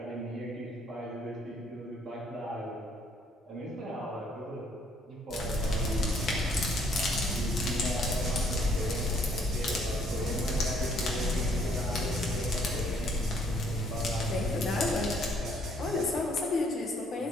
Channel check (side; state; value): both; normal; correlation 0.65